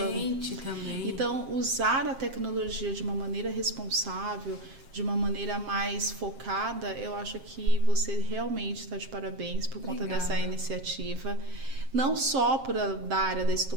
também. Então, usar a tecnologia de uma maneira responsável, de uma maneira mais focada, eu acho que você realmente está de parabéns por conta dessa iniciativa. Não só da área da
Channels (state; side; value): late; left; 7.5 ms